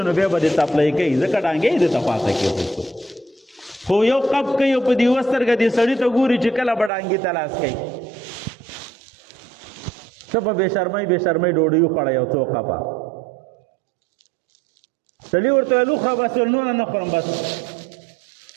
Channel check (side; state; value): left; drops out; at 6.9 s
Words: نو بیا به دې تپلی کوي، ځکه ډانګې یې دته خواته کېښود. خو یو قب کوي او په دې یوه سترګه دې سړي ته ګوري چې کله به ډانګې ته لاس کوي. ته به بې شرمۍ ډوډۍ وخوړه یو څو قبه. سړي ورته ویل وخوره بس نور نه خورم بس.